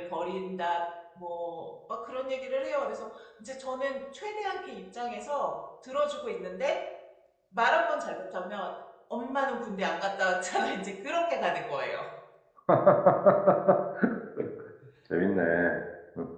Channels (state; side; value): identical; both; correlation 1.00